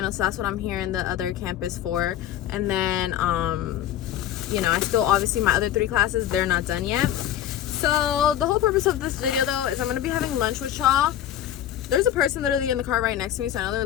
So that's what I'm here in the other campus for. And then you know, I still, obviously my other 3 classes, they're not done yet. So the whole purpose of this video though is I'm gonna be having lunch with y'all. There's a person literally in the car right next to me, so I know they're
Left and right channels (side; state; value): right; quieter; 11.4 dB